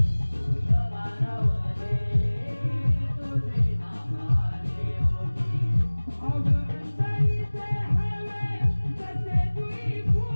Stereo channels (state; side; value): inverted; both; correlation -1.00